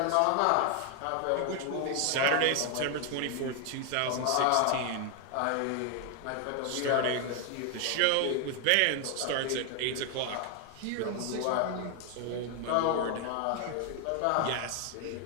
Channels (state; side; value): different; both; correlation 0.00